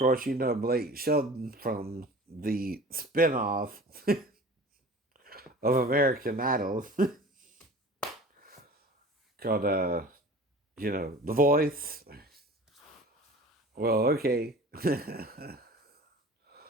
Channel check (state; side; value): normal; both; correlation 0.41